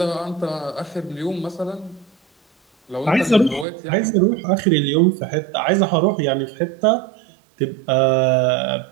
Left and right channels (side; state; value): left; drops out; at 3.7 s